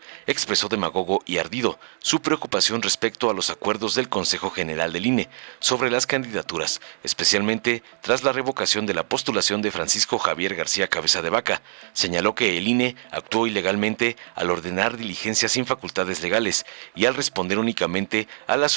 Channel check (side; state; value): left; silent; 63 dB below the other